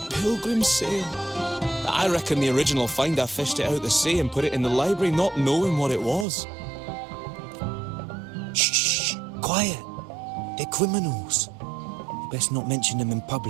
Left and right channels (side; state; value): left; drops out; at 6.2 s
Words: Sail. I reckon the original finder fished it out the sea and put it in the library, not knowing what it was. Shh, quiet. They're criminals. You best not mention them in